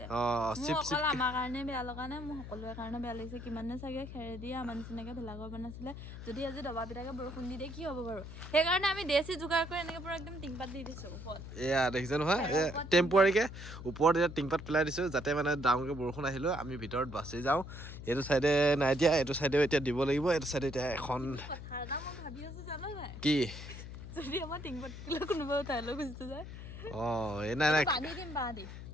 মোৰ অকল আমাৰ কাৰণে বেয়া লগা নাই, মোৰ সকলোৰে কাৰণে বেয়া লাগিছে। কিমানে চাগে খেৰেদি আমাৰ নিচিনাকে ভেলাঘৰ বনাইছিলে। যদি আজি দবা পিটাকে বৰষুণ দি দিয়ে কি হ'ব বাৰু? সেইকাৰণে আমি দেশী যোগাৰ কৰি এনেকে পুৰা একদম টিংপাত দি দিছোঁ ওপৰত। এয়া দেখিছে নহয়, টেম্পৰাৰীকে ওপৰত এতিয়া টিংপাত পেলাই দিছোঁ, যাতে মানে ডাঙৰকৈ বৰষুণ আহিলেও আমি ভিতৰত বাচি যাওঁ। এইটো চাইডে নাই দিয়া, এইটো চাইডেও এতিয়া দিব লাগিব। এইটো চাইডে এতিয়া এখন ভাবি আছোঁ জানো নাই, কি যদি আমাৰ টিংপাত কোনোবা উঠাই লৈ গুচি যায়। নাই বান্ধি দিম বাঁহ দি।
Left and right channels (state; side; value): noise; left; hum, 11 dB below the sound